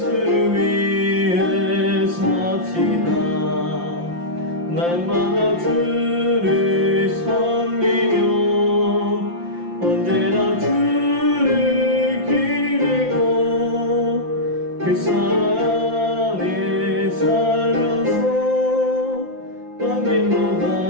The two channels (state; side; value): late; left; 5.8 ms